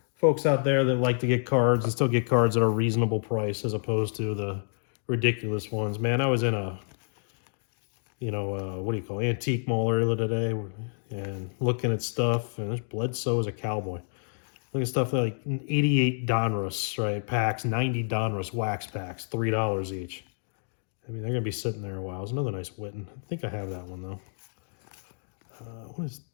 folks out there that like to get cards and still get cards at a reasonable price as opposed to the ridiculous ones. Man, I was in a what do you call it, antique mall earlier today and looking at stuff, and there's Bledsoe as a cowboy. Looking at stuff like 88 Donruss, right, packs, 90 Donruss wax packs, $3 each. I mean, they're going to be sitting there a while. There's another nice Witten. I think I have that one, though. What is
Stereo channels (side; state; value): right; silent; digital silence